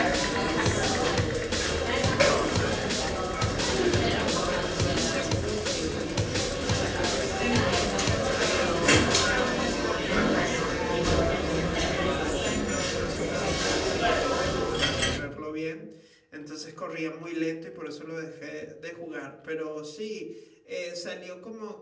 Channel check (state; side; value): identical; both; correlation 1.00